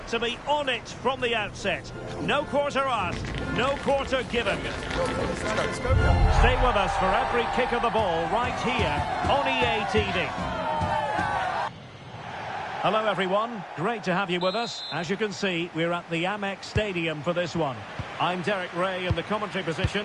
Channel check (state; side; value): identical; both; correlation 1.00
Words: to be on it from the outset. No quarter asked, no quarter given. Stay with us for every kick of the ball right here on EA TV. Hello everyone, great to have you with us. As you can see, we're at the Amex Stadium for this one. I'm Derek Ray in the commentary